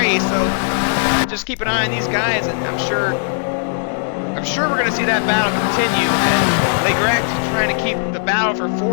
so just keep an eye on these guys, and I'm sure we're going to see that battle continue. And Legrec trying to keep the battle for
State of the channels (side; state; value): right; silent; digital silence